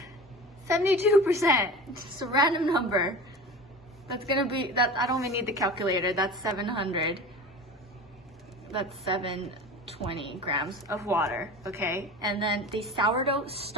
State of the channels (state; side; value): normal; both; correlation 0.34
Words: 72%, just a random number. That's gonna be, that I don't even need the calculator, that's 700. That's 720 grams of water, okay? And then the sourdough